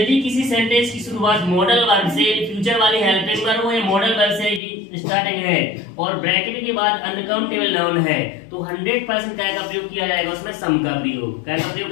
किसी सेंटेंस की शुरुआत मॉडल वर्ब से, फ्यूचर वाली हेल्पिंग वर्ब हो या मॉडल वर्ब से स्टार्टिंग है और ब्रैकेट के बाद अनकाउंटेबल नाउन है तो 100% क्या का प्रयोग किया जाएगा उसमें सम का प्रयोग। क्या का प्रयोग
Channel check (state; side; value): drops out; right; at 4.6 s